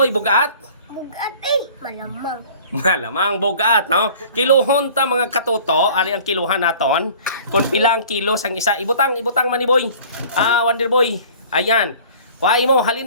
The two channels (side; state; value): both; inverted; correlation -0.48